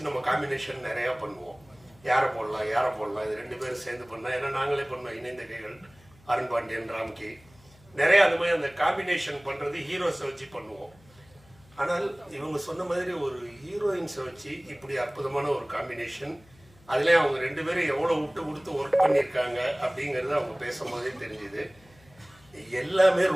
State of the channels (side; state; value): left; noise; hum, 28 dB below the sound